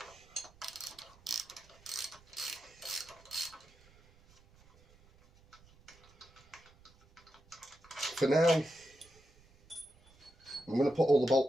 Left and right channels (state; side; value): noise; right; rumble, 27 dB below the sound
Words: For now, I'm going to put all the